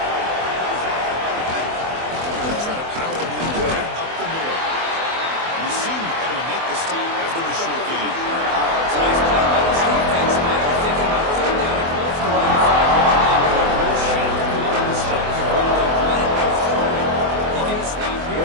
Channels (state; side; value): late; left; 24 ms